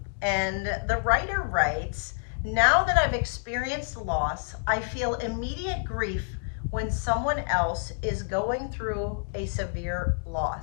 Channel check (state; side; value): silent; right; digital silence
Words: And the writer writes, now that I've experienced loss, I feel immediate grief when someone else is going through a severe